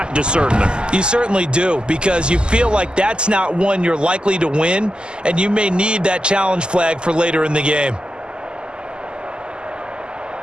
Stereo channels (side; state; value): left; late; 0.048 ms